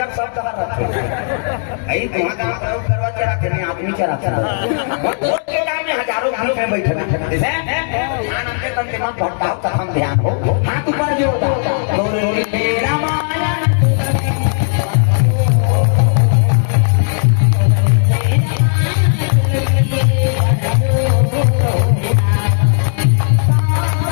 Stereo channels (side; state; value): right; silent; 70 dB below the other